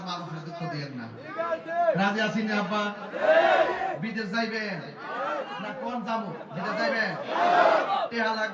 মা বাপের দুঃখ দিয়েন না। রাজি আছি না আব্বা? বিদেশ যাইবেন না কোন যাবো? বিদেশ যাইবেন? টেহা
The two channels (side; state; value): both; identical; correlation 1.00